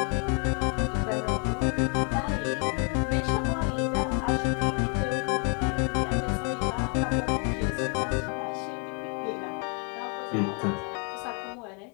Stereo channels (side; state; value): right; quieter; 38.3 dB